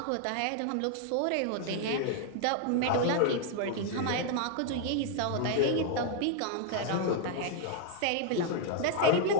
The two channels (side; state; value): both; different; correlation 0.00